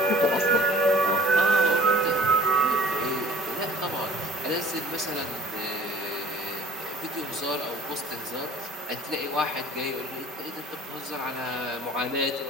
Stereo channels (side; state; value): both; normal; correlation 0.51